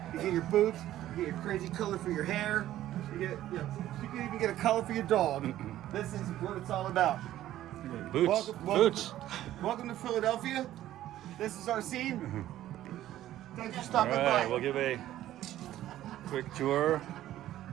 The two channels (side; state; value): left; quieter; 13.4 dB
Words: you get your boots, you get your crazy color for your hair, you can even get a color for your dog. This is what it's all about. Boots. Boots. Welcome to Philadelphia. This is our scene. Thanks for All stopping right, by. we'll give a quick tour.